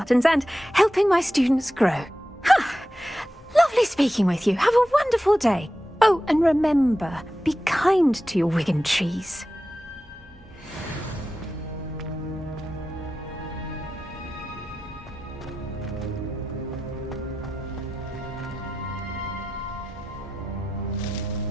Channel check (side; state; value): both; normal; correlation 0.92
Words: and helping my students grow. Lovely speaking with you. Have a wonderful day. Oh, and remember, be kind to your wigan trees.